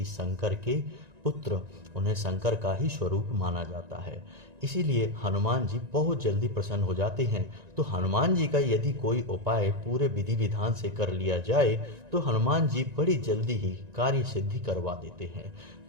शंकर के पुत्र, उन्हें शंकर का ही स्वरूप माना जाता है। इसीलिए हनुमान जी बहुत जल्दी प्रसन्न हो जाते हैं। तो हनुमान जी का यदि कोई उपाय पूरे विधि विधान से कर लिया जाए तो हनुमान जी बड़ी जल्दी ही कार्य सिद्धि करवा देते हैं।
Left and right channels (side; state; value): left; late; 1.9 ms